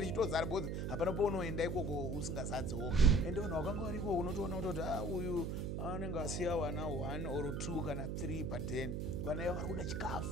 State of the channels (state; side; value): noise; right; hum, 1 dB below the sound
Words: boss. Hapana paunoenda ikoko usingazadzewo. Ende vanhu vakanga variko unotoona kuti uyu anenge asiya wana 1 or 2 kana 3 per day. Vana ava vari kuda